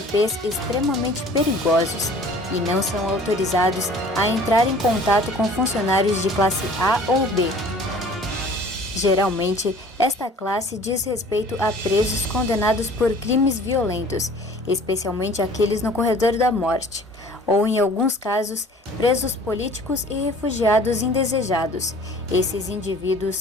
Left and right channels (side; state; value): both; normal; correlation 0.49